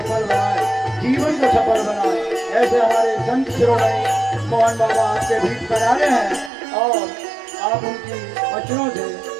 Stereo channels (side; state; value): left; drops out; at 6.5 s